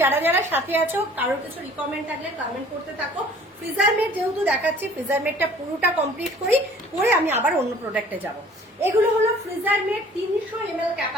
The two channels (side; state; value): both; normal; correlation 0.52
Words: যারা যারা সাথে আছো কারোর কিছু রিকমেন্ড থাকলে কমেন্ট করতে থাকো। ফ্রিজার মেট যেহেতু দেখাচ্ছি, ফ্রিজার মেটটা পুরোটা কমপ্লিট করি, করে আমি আবার অন্য প্রোডাক্টে যাব। এগুলো হলো freezer mate 300 ml